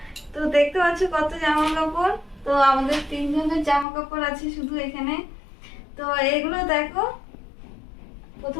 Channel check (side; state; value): right; drops out; at 3.9 s